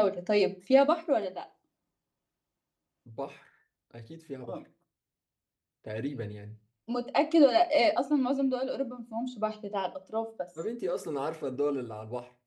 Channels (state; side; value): identical; both; correlation 1.00